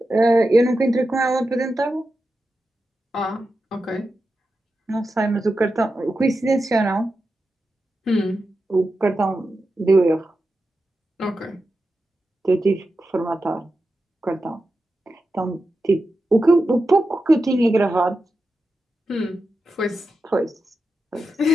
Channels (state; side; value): normal; both; correlation 0.90